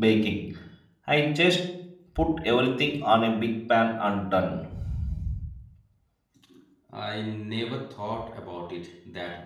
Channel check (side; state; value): both; identical; correlation 1.00